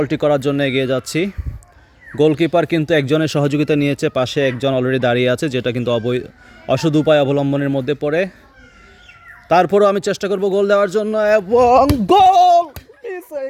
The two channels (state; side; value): identical; both; correlation 1.00